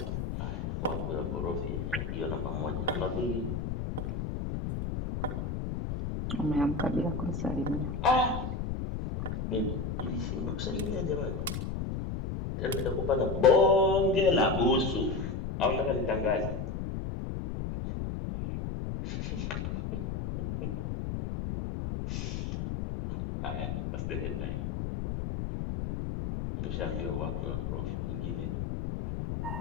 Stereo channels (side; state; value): left; noise; rumble, 3 dB below the sound